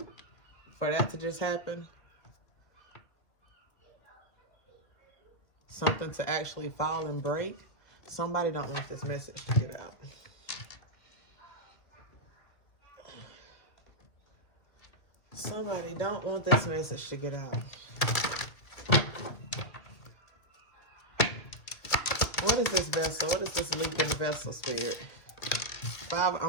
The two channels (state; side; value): late; right; 2.2 ms